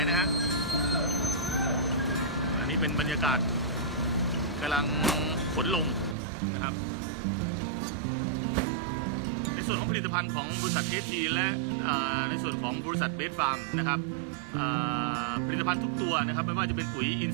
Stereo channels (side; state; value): left; drops out; at 6.2 s